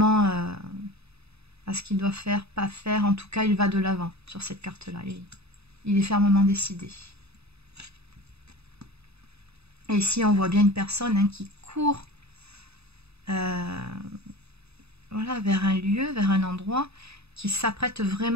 à ce qu'il doit faire, pas faire. En tout cas, il va de l'avant sur cette carte-là. Il est fermement décidé. Et ici, on voit bien une personne hein, qui court voilà, vers un lieu, vers un endroit, qui s'apprête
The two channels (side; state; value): left; late; 0.79 ms